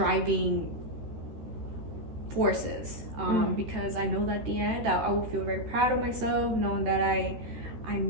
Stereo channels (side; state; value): left; late; 13 ms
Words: forces, because I know that at the end I will feel very proud of myself, knowing that I